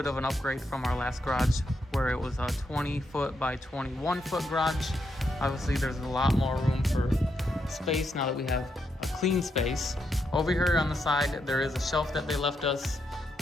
of an upgrade from our last garage where it was a 20 foot by 21 foot garage. Obviously there's a lot more room for space now that we have a clean space. Over here on the side there is a shelf that they left us.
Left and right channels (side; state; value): both; normal; correlation 0.81